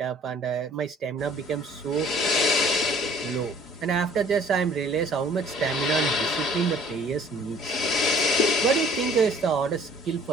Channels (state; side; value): normal; both; correlation 0.54